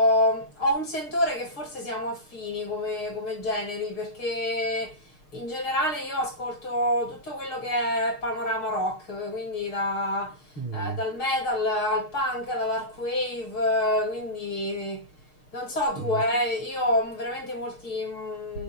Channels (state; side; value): late; right; 6.5 ms